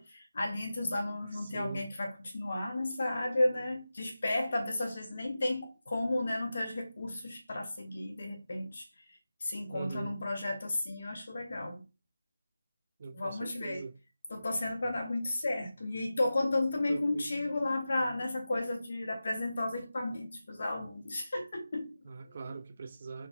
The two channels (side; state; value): both; inverted; correlation -0.94